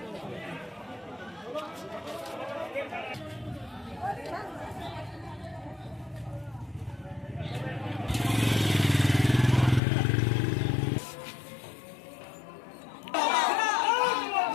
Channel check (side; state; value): right; drops out; at 9.8 s